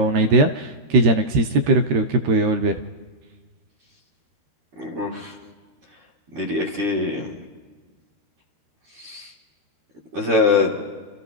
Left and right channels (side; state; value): left; late; 13 ms